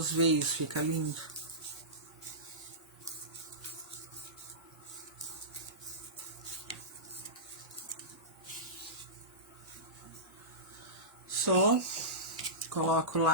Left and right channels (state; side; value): normal; both; correlation -0.19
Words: veios, fica lindo. Só coloco